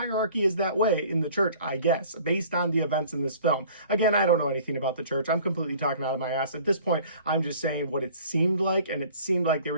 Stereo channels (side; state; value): both; inverted; correlation -0.50